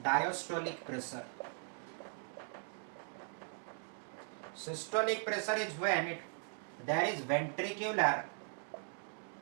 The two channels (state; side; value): silent; left; 52 dB below the other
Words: diastolic pressure. Systolic pressure is when there is ventricular